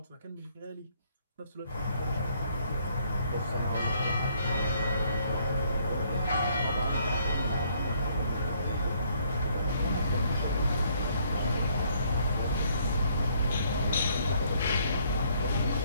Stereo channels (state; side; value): inverted; both; correlation -0.67